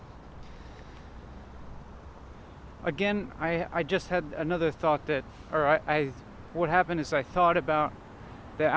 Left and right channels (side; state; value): both; identical; correlation 1.00